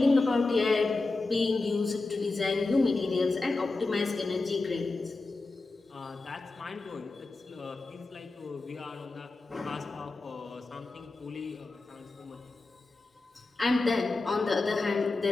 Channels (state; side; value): quieter; right; 3.4 dB